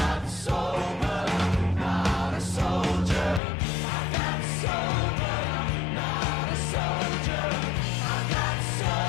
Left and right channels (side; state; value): right; drops out; at 3.4 s